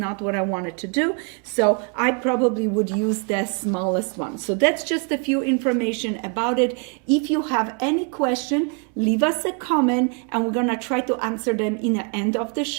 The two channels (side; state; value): left; quieter; 37.8 dB